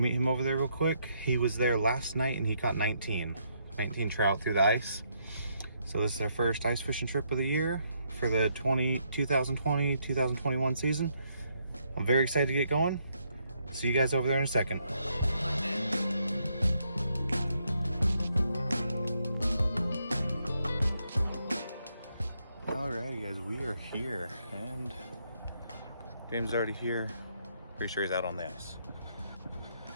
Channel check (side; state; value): both; inverted; correlation -0.75